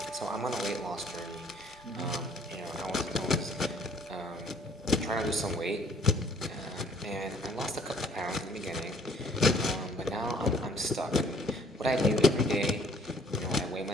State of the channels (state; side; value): normal; both; correlation 0.59